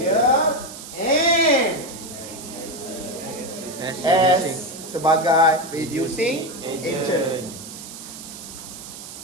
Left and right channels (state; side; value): noise; right; hiss, 13 dB below the sound